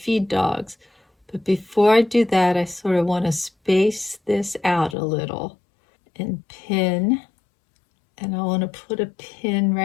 dogs. But before I do that, I sort of want to space this out a little and pin. And I want to put a pin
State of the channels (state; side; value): drops out; right; at 5.0 s